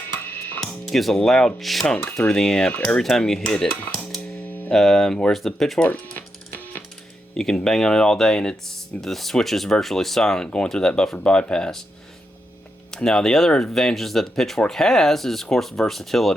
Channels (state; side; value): normal; both; correlation 0.84